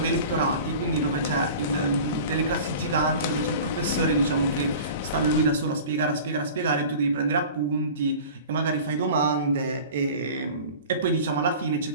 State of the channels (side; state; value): both; inverted; correlation -0.39